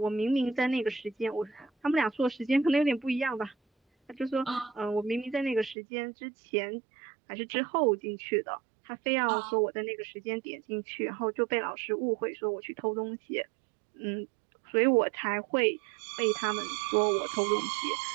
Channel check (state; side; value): drops out; left; at 5.8 s